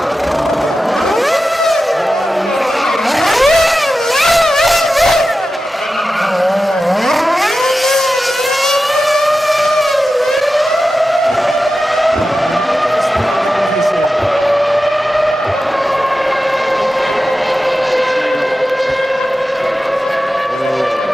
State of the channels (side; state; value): both; normal; correlation 0.93